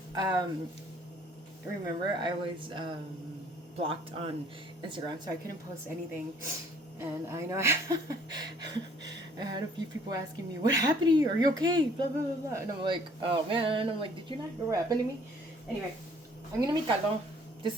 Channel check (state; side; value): normal; both; correlation 0.58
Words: remember I was blocked on Instagram, so I couldn't post anything. And I know I had a few people asking me, "What happened to you? Are you okay?" Blah blah blah blah. And I'm like, "Oh man!" I'm like, "Did you not hear what happened to me?" Anyway, I'm gonna make caldo. This